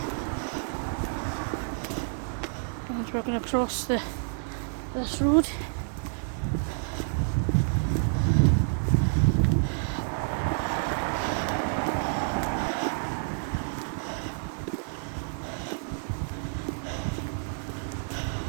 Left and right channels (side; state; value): left; silent; 59 dB below the other